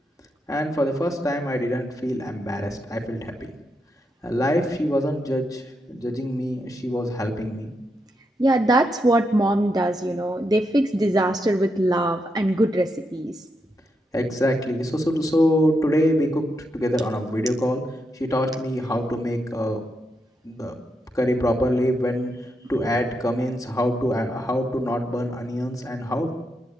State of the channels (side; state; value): both; normal; correlation 0.83